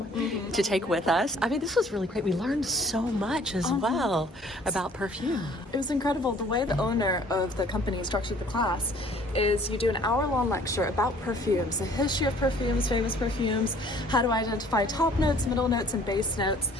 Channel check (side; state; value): both; normal; correlation 0.55